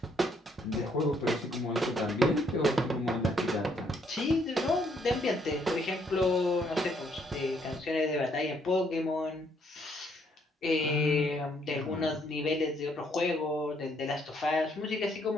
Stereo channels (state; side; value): normal; both; correlation 0.70